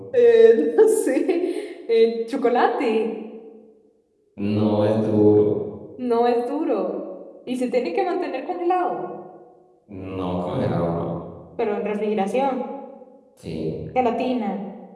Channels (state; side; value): identical; both; correlation 1.00